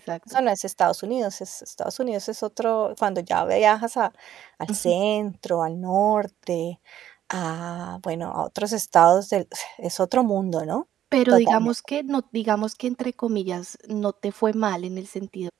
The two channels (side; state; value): left; quieter; 11.2 dB